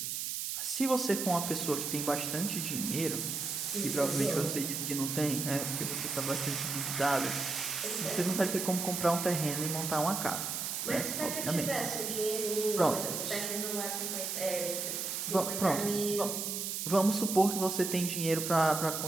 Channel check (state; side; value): noise; right; hiss, 3 dB below the sound